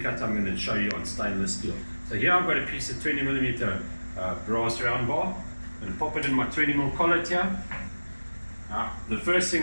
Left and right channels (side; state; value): both; inverted; correlation -1.00